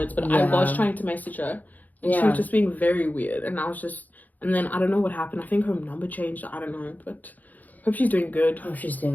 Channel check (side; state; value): right; late; 0.081 ms